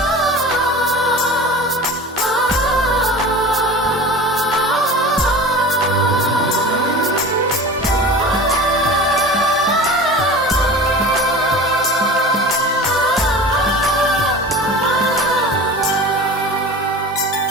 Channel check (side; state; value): both; normal; correlation 0.36